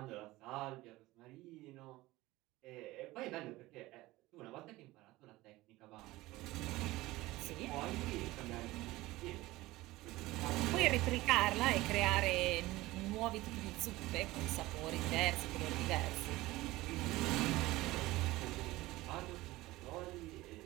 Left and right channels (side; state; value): left; quieter; 18.8 dB